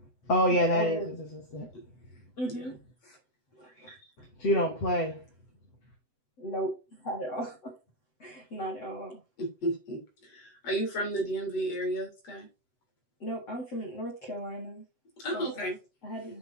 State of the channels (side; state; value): right; late; 7.9 ms